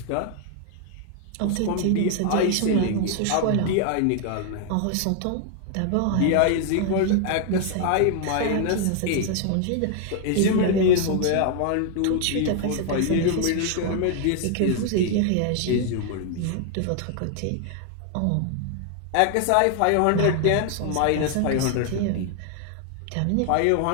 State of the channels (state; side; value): different; both; correlation 0.00